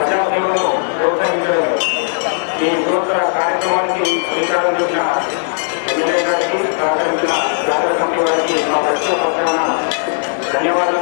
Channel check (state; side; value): silent; right; digital silence